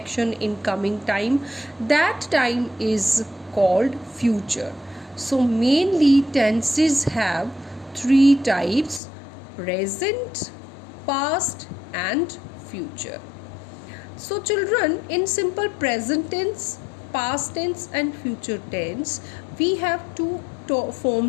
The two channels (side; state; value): right; drops out; at 9.0 s